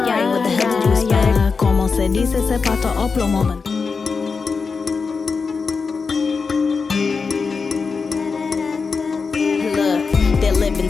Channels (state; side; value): quieter; right; 4.9 dB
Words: what the hell did you expect? Como se dice, se pato o plomo. Living,